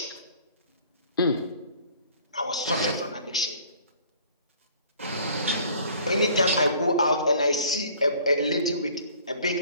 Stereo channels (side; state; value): both; inverted; correlation -0.53